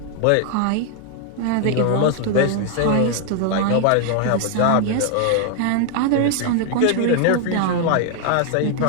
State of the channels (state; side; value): different; both; correlation 0.00